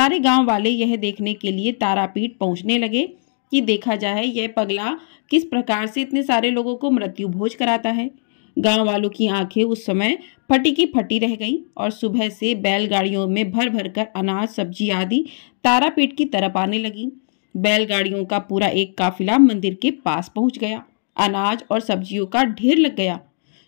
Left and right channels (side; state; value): right; silent; digital silence